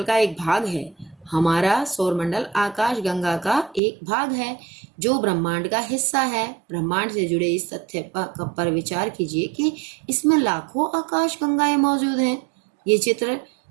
का एक भाग है, हमारा सौरमंडल आकाश गंगा का एक भाग है जो ब्रह्मांड का हिस्सा है। ब्रह्मांड से जुड़े इस तथ्य पर विचार कीजिए कि इसमें लाखों आकाश गंगाएं मौजूद हैं। ये चित्र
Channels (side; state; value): left; drops out; at 3.8 s